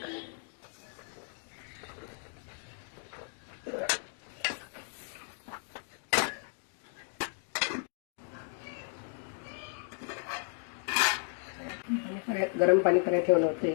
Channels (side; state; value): right; silent; 55 dB below the other